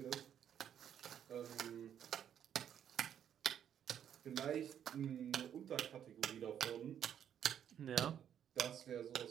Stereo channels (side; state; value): left; quieter; 9.4 dB